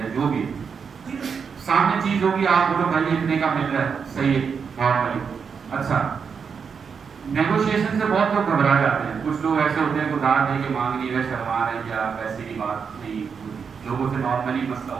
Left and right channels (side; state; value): left; quieter; 6.2 dB